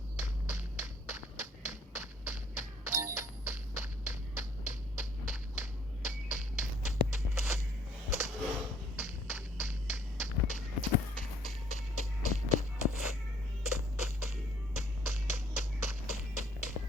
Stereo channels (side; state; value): both; normal; correlation 0.62